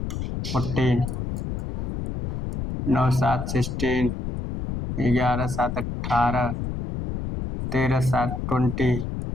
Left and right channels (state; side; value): noise; left; rumble, 4 dB below the sound